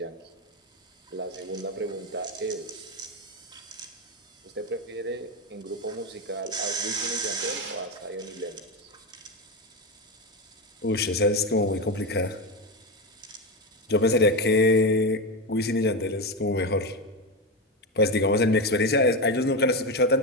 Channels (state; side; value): normal; both; correlation 0.14